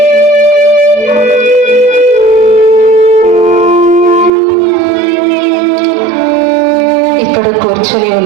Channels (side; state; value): left; drops out; at 4.3 s